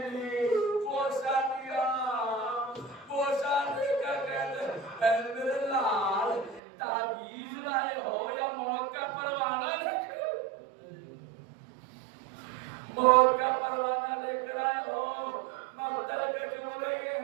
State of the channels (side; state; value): left; drops out; at 6.6 s